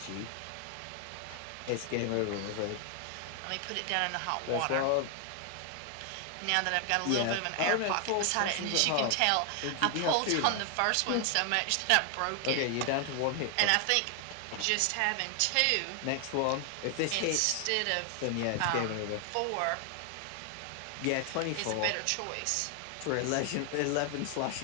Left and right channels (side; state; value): both; different; correlation 0.00